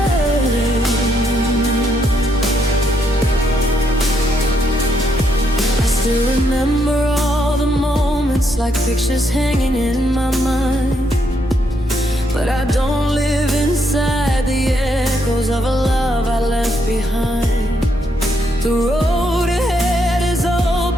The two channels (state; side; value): normal; both; correlation 0.76